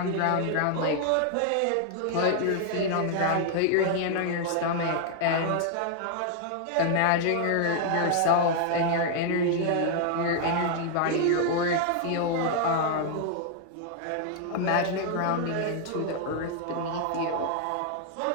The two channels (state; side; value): different; both; correlation 0.00